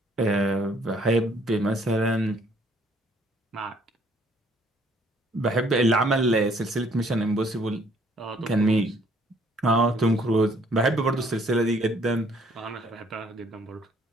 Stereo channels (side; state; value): both; normal; correlation 0.63